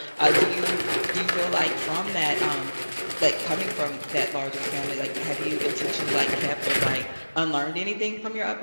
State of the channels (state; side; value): inverted; both; correlation -1.00